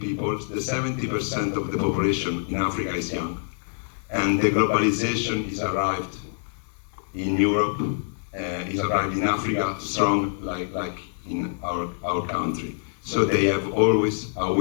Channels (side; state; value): right; silent; 61 dB below the other